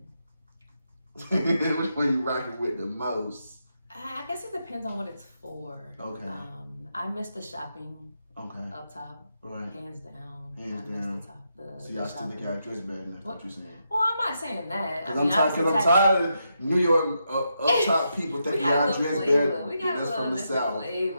Which one you rocking with the most? I guess it depends on what it's for. Okay. I miss the shopping. Okay. Up top. Right. Hands down. Hands I down. miss the top. So y'all still think y'all dress better than that's what you're saying? Well, I'm not saying that. Because I'm tired of New York up top people thinking y'all dress better. We got a from the little South.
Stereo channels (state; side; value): inverted; both; correlation -0.83